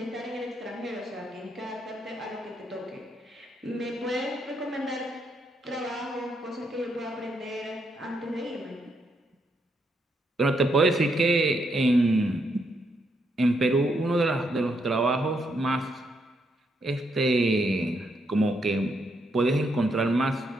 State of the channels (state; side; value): normal; both; correlation 0.77